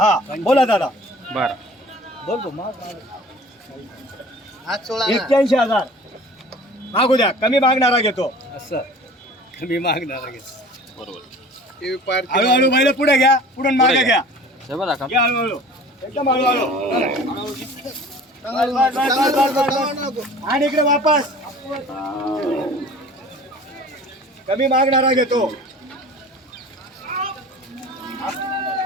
बोला दादा. बरं. बोल तू माग 81,000 मागू द्या. कमी मागणारा घेतो. असं कमी मागणार बरोबर. हळूहळू बैल पुढे घ्या. पुढून मागे पुढे घ्या. बरं का घ्या हळूहळू. एकदम हळूहळू. आणि इकडे वापस. कमी मागणारा घेतो.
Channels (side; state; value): both; normal; correlation 0.45